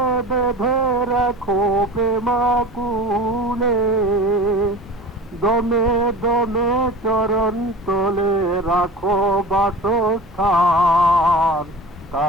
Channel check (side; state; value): both; normal; correlation 0.36